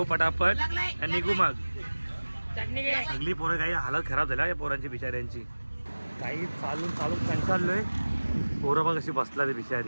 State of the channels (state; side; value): inverted; both; correlation -1.00